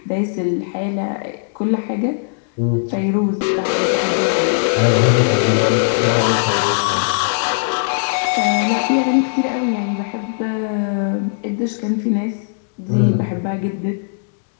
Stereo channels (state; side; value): silent; right; digital silence